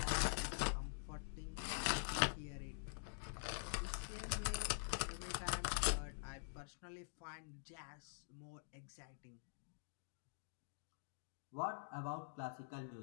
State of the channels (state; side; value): silent; right; digital silence